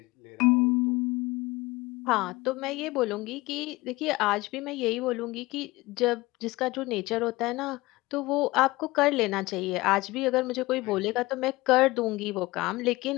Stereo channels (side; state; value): right; quieter; 20.6 dB